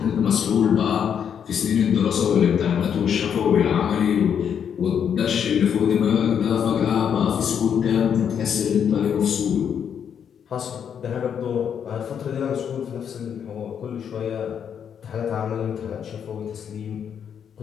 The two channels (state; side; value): quieter; right; 8.0 dB